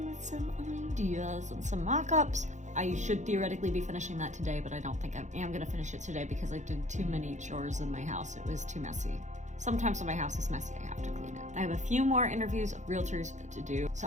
with some ideas and some mock-ups. I should theoretically be finishing that today, but I don't think I am gonna finish it today because I did too many chores in my house. It was too messy. Sometimes when my house is messy, I have to clean it. I have a few more interviews of realtors to do, so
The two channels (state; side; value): late; left; 0.35 ms